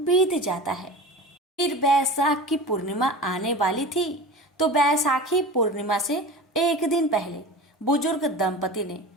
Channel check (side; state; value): both; normal; correlation 0.33